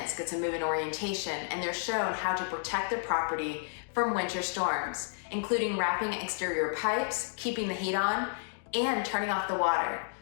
gets a move-in orientation, and they're shown how to protect their property from winter storms, including wrapping exterior pipes, keeping the heat on, and turning off the water.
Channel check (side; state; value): right; silent; digital silence